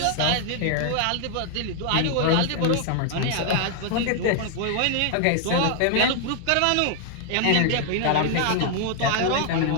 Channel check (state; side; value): different; both; correlation 0.00